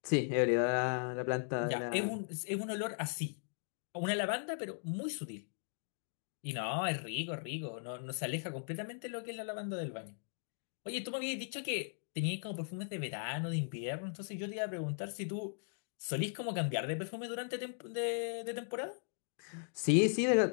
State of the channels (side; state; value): right; silent; digital silence